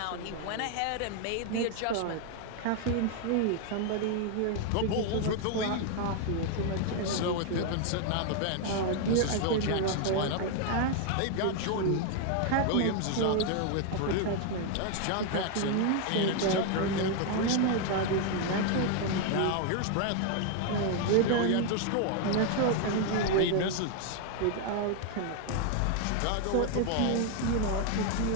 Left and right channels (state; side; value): different; both; correlation 0.00